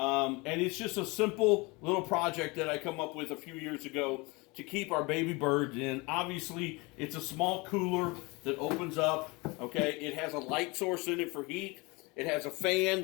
it's just a simple little project that I come up with a few years ago to keep our baby birds in. Obviously, it's a small cooler that opens up, okay? It has a light source in it for heat. It has a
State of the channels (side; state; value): right; quieter; 25.8 dB